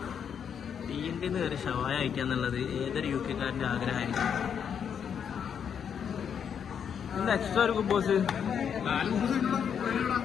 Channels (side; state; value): right; quieter; 7.7 dB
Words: തീൻ്റെ കയറി ഷവായ അയക്കാന്നുള്ളത് ഏതൊരു യു കെക്കാരന്റെ ആഗ്രഹമായിരിക്കും. എന്താ എക്സ്ട്രാ ഒരു ബോസ്